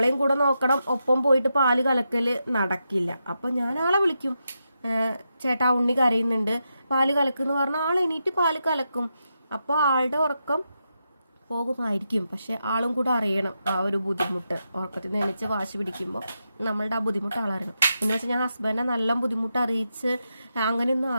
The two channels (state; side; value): inverted; both; correlation -0.86